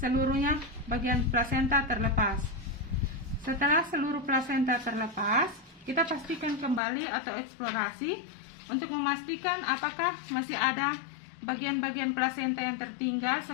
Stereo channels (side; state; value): right; drops out; at 6.8 s